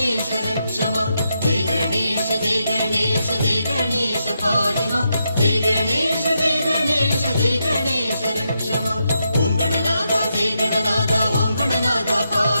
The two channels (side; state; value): both; inverted; correlation -0.83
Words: रक्ष मां जय गणेश जय गणेश जय गणेश पाहि मां जय गणेश जय गणेश जय गणेश रक्ष मां ओम गणनादा जय गणनादा ओम गणनादा